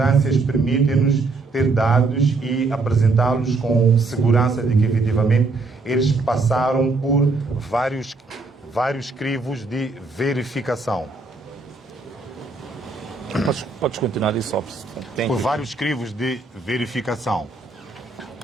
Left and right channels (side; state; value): left; quieter; 3.7 dB